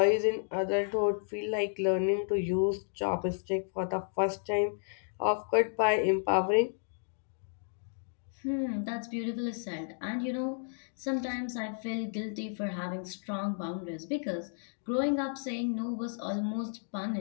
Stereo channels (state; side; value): silent; right; digital silence